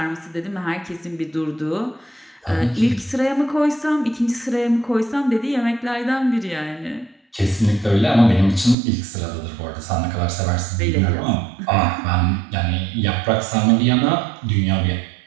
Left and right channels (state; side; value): drops out; left; at 8.8 s